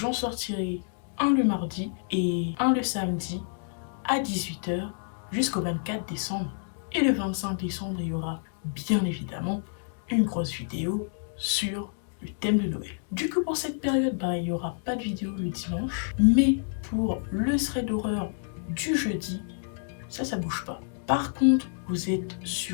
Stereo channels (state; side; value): silent; right; digital silence